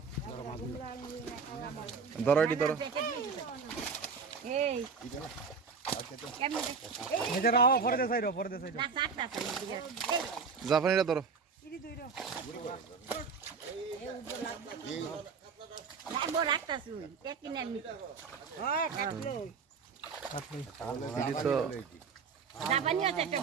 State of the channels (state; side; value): quieter; left; 5.4 dB